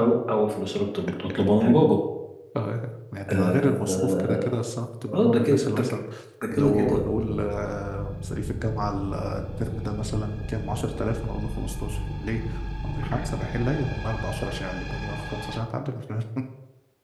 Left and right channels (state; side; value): identical; both; correlation 1.00